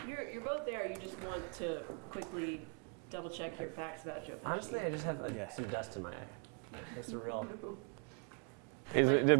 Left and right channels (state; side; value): quieter; left; 39.5 dB